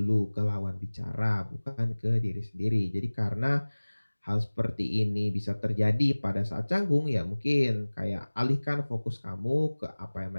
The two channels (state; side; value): inverted; both; correlation -1.00